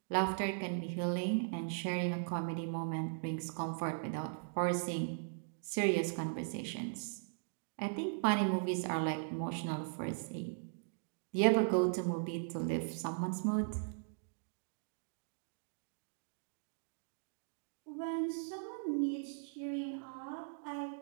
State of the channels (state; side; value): silent; left; digital silence